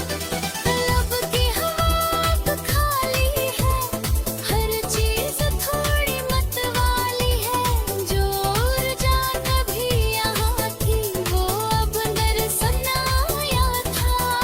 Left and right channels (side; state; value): both; identical; correlation 1.00